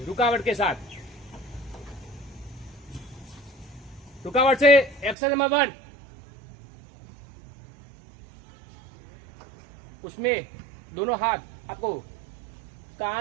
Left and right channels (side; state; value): left; drops out; at 5.2 s